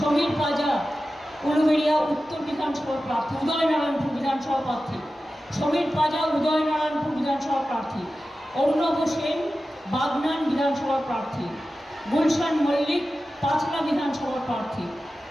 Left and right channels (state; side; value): normal; both; correlation 0.94